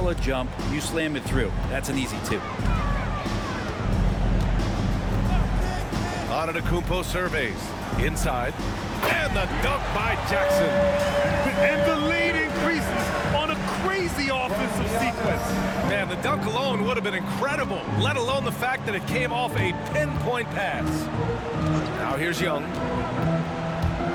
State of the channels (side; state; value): both; identical; correlation 1.00